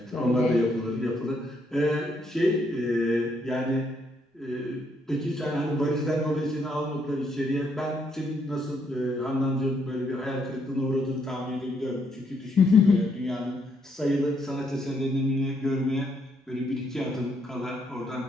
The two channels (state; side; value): normal; both; correlation 0.73